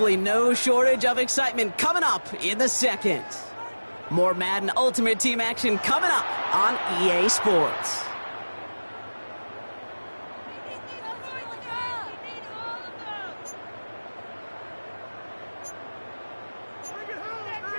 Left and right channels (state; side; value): inverted; both; correlation -1.00